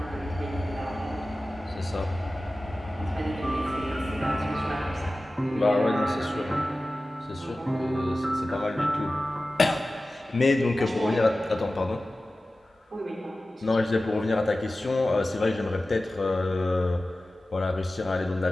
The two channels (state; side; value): normal; both; correlation 0.96